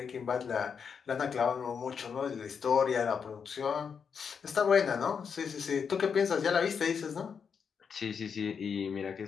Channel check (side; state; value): right; quieter; 6.5 dB